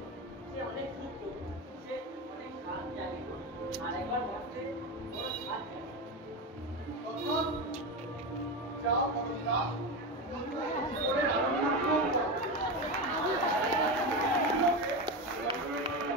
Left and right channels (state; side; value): normal; both; correlation 0.18